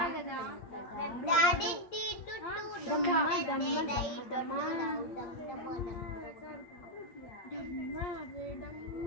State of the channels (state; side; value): late; right; 8.6 ms